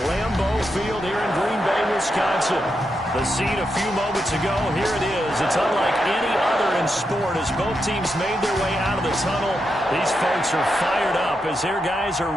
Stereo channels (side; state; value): both; normal; correlation 0.85